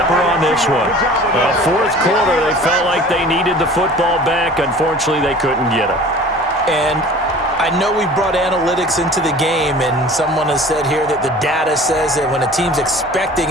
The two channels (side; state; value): both; normal; correlation 0.44